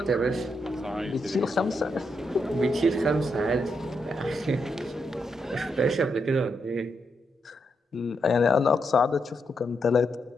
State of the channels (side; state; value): both; normal; correlation 0.81